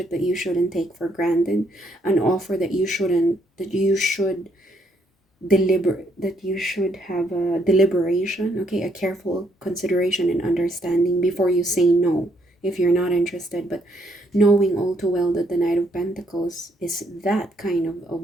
that you shouldn't take for granted, an offer that you should have a deliberation, okay, a careful consideration and understanding before you say no if you're not interested. But knowing all too well that the Knight of Pentacles is that kind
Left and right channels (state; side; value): normal; both; correlation 0.71